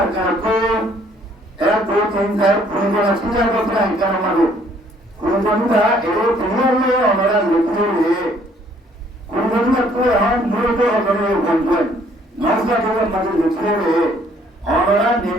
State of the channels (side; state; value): both; normal; correlation 0.62